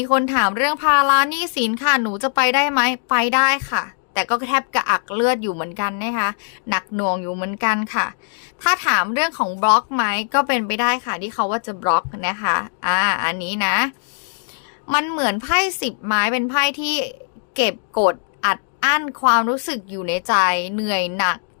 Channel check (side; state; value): right; silent; digital silence